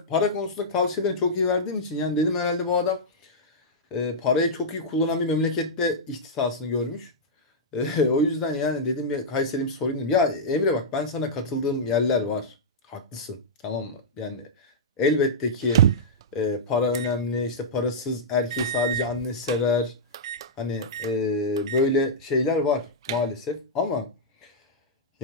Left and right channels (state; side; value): normal; both; correlation -0.10